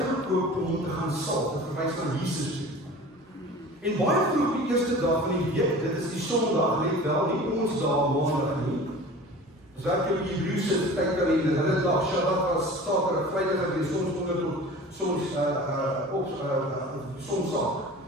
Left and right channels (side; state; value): both; normal; correlation 0.40